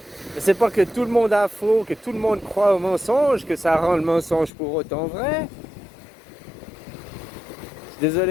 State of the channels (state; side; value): drops out; right; at 4.5 s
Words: C'est pas que tout le monde a faux, que tout le monde croit au mensonge, que ça rend le mensonge pour autant vrai. Je suis